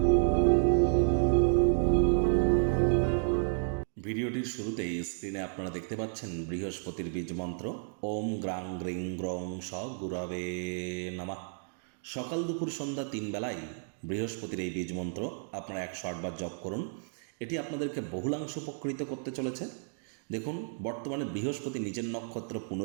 ভিডিওটির শুরুতেই স্ক্রিনে আপনারা দেখতে পাচ্ছেন বৃহস্পতির বীজ মন্ত্র ওম গ্রাং গ্রিং গ্রং স গুরবে নমঃ। সকাল দুপুর সন্ধ্যা 3 বেলায় বৃহস্পতির এই বীজ মন্ত্র আপনারা 108 বার জপ করুন। এটি আপনাদেরকে বহুলাংশ উপকৃত করতে চলেছে। দেখুন, বর্তমানে বৃহস্পতি নিজের নক্ষত্র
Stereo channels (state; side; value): silent; left; digital silence